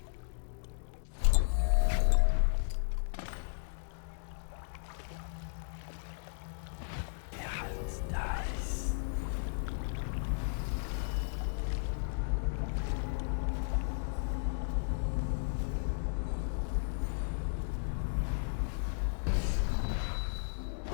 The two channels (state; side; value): silent; right; digital silence